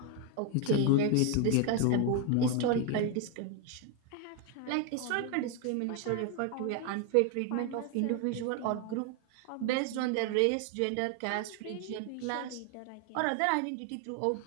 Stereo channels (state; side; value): different; both; correlation 0.01